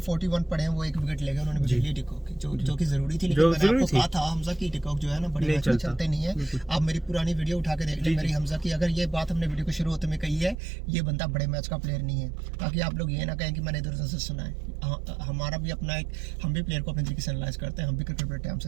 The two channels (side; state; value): left; drops out; at 10.6 s